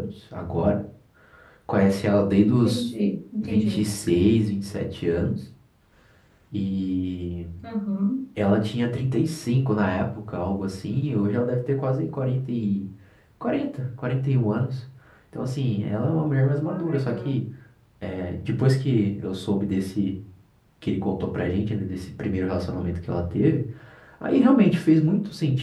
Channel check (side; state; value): both; identical; correlation 1.00